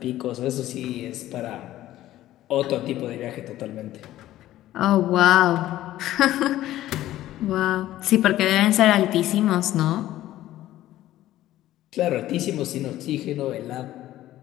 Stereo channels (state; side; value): quieter; right; 14.3 dB